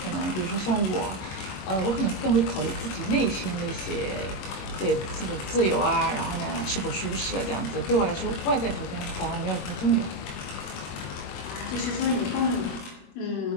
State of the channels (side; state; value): right; late; 21 ms